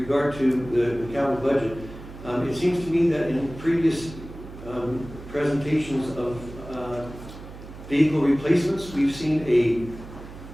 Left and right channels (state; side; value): noise; right; hum, 15 dB below the sound